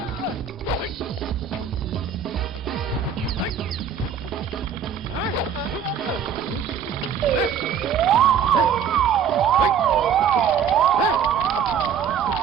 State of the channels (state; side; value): quieter; left; 7.6 dB